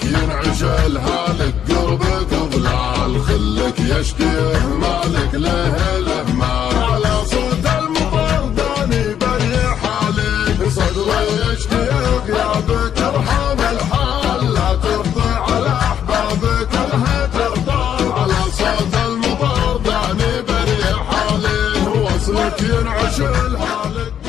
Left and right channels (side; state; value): right; quieter; 9.4 dB